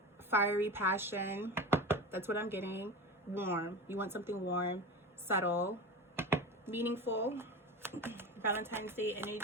fiery passion. That's what I'm getting. Warm. You want something warm, subtle, meaningful. Valentine's Day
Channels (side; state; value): both; normal; correlation 0.27